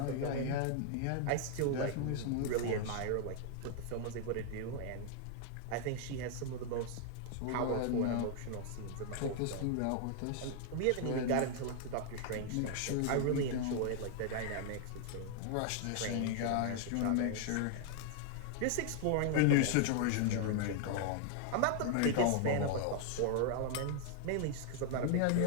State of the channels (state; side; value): different; both; correlation -0.01